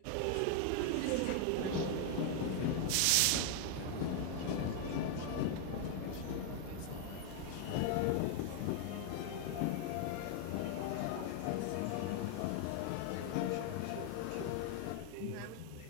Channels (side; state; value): both; different; correlation 0.00